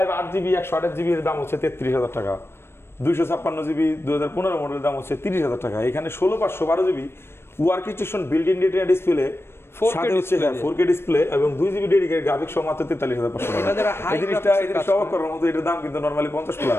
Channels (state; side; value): late; right; 0.12 ms